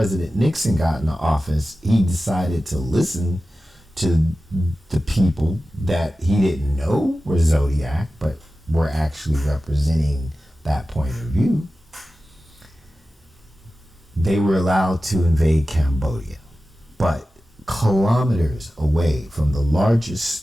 Nixon got into office, he decided to listen to the people that he didn't know were Zodiac, but were actually representing that point of view. They were allowed to invade Cambodia, but kilometers away from the largest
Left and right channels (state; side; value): normal; both; correlation 0.94